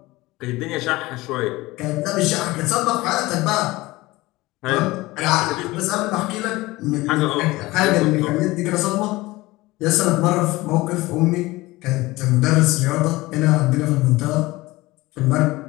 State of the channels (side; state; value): right; quieter; 20.0 dB